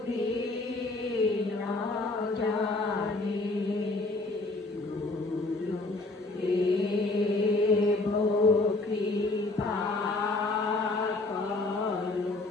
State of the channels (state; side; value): quieter; right; 3.1 dB